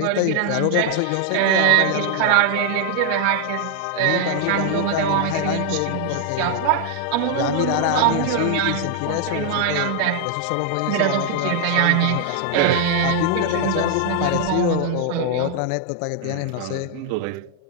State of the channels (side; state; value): both; different; correlation 0.00